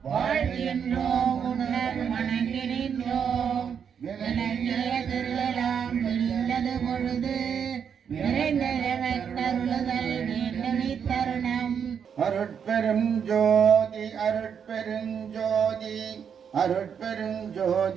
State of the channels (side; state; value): left; quieter; 7.4 dB